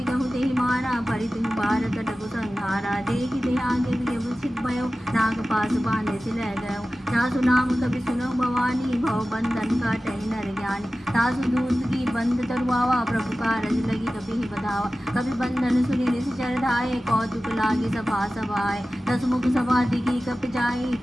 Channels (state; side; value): normal; both; correlation 0.96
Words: कहु ते मारा परितु पार कटकु संहारा। देखि ते आगे विषित भयो नाग पास बांधे से लह गयो। तासु नाम कभी सुनो भवानी भव बंधन काटहि नर ज्ञानी। तासु दूत की बंद तरुआवा प्रभु कारज लगी कभी ही बधावा। कभी बंधन सुनि निश्चर धाये कौतुक लागे सभा सभाए। दसमुख सभा दिखी कप जाई